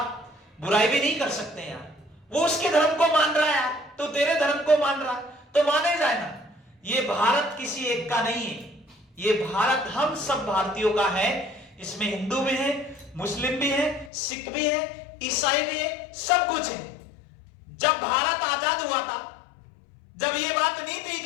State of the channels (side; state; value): right; drops out; at 14.1 s